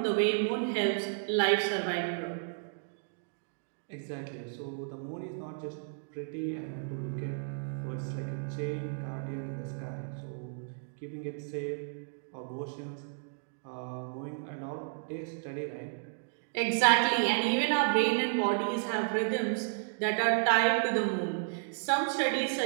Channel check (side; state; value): left; silent; digital silence